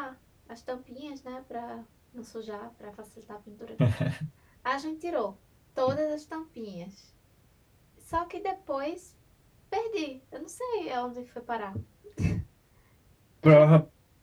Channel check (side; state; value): both; identical; correlation 1.00